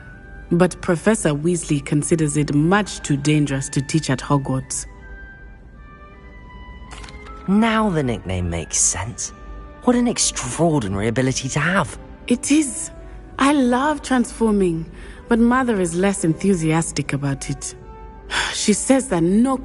but Professor Weasley considers it much too dangerous to teach at Hogwarts. Now the nickname makes sense. What an extraordinary ability to have. It is. I love transforming, but Mother is less enthusiastic about it. She says that no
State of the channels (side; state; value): both; identical; correlation 1.00